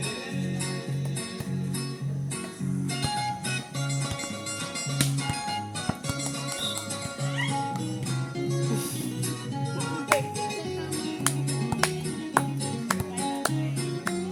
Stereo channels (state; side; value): identical; both; correlation 1.00